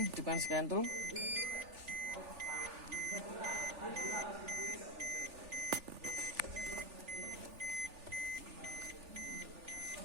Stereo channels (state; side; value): late; left; 3.4 ms